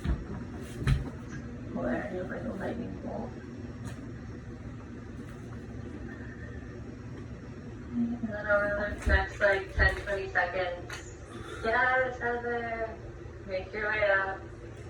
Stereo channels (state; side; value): identical; both; correlation 1.00